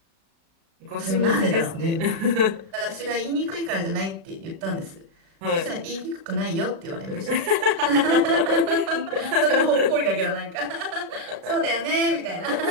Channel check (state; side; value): late; left; 36 ms